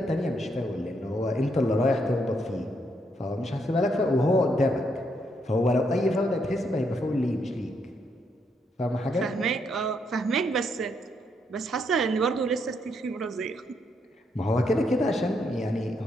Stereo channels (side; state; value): both; normal; correlation 0.76